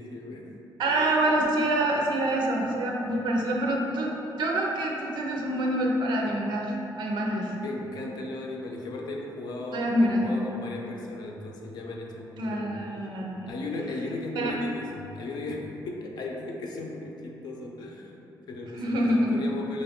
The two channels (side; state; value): both; normal; correlation 0.62